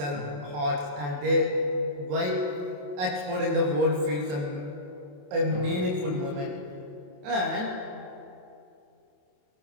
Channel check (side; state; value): left; late; 28 ms